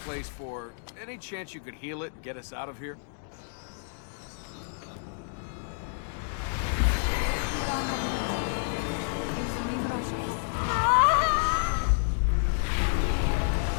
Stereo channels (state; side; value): silent; right; digital silence